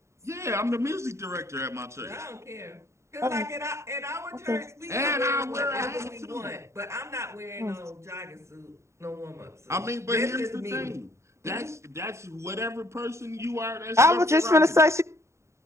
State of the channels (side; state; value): left; late; 0.14 ms